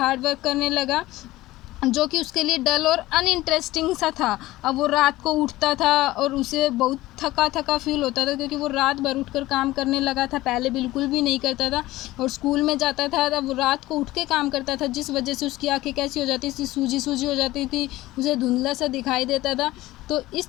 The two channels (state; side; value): quieter; right; 17.4 dB